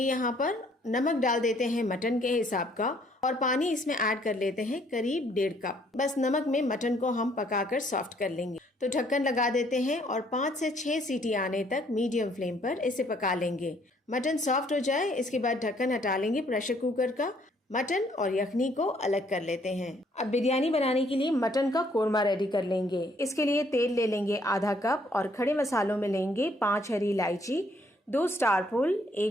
यहाँ पर नमक डाल देते हैं मटन के हिसाब का और पानी इसमें ऐड कर लेते हैं करीब 1.5 कप। बस नमक में मटन को हम पकाकर सॉफ्ट कर लेंगे। तो ढक्कन लगा देते हैं और 5 से 6 सीटी आने तक मीडियम फ्लेम पर इसे पका लेंगे। मटन सॉफ्ट हो जाए इसके बाद ढक्कन हटा लेंगे प्रेशर कुकर का। मटन और यखनी को अलग कर लेते हैं। अब बिरयानी बनाने के लिए मटन का कोरमा रेडी कर लेंगे। इसके लिए तेल ले लेंगे आधा कप और खड़े मसालों में लेंगे 5 हरी इलायची, 2 स्टार फूल,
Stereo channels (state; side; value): normal; both; correlation 0.65